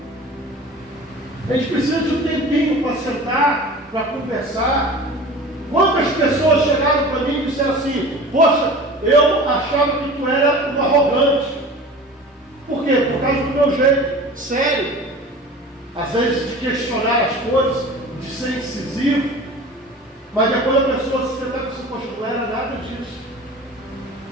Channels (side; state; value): both; normal; correlation 0.39